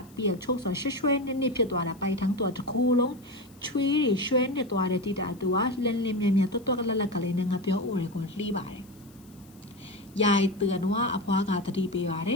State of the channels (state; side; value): noise; left; hiss, 28 dB below the sound